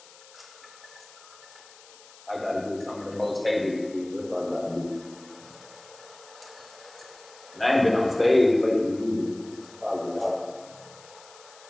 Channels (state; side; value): noise; left; hiss, 22 dB below the sound